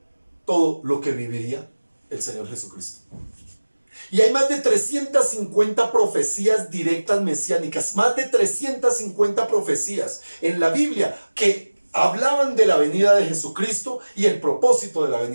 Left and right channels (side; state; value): both; inverted; correlation -1.00